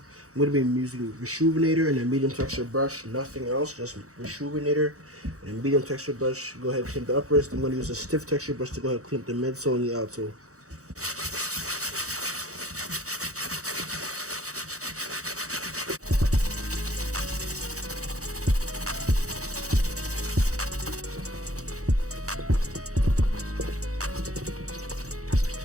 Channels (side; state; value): left; late; 0.65 ms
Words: I'm going to be using Rejuvenator and a medium texture brush, nothing else, just Rejuvenator and a medium texture brush. Go ahead and clean the uppers. I'm going to use a stiff texture brush to go ahead and clean up the midsole and the outsole.